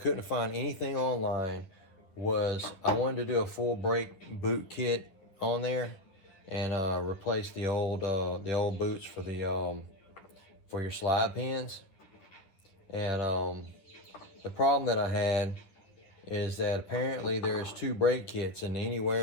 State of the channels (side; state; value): right; late; 10 ms